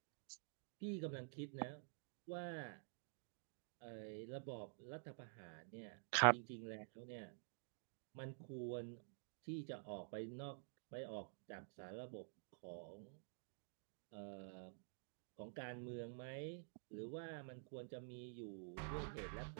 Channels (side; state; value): left; silent; digital silence